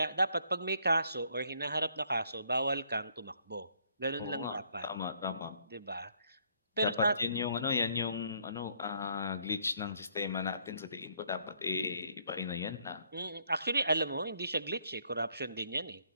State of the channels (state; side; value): inverted; both; correlation -0.66